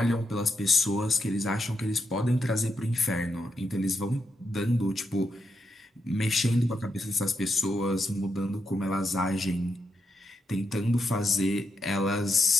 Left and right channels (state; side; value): normal; both; correlation 0.83